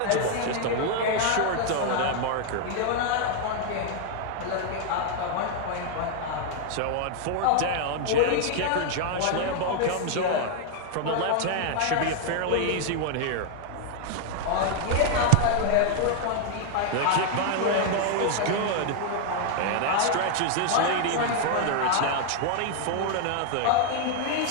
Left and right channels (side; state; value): both; different; correlation 0.00